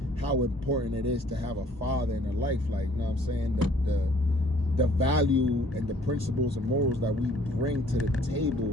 how important it is to have a father in her life. Like, you know what I'm saying? The value and the principles and morals that we bring to the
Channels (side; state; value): both; normal; correlation 0.58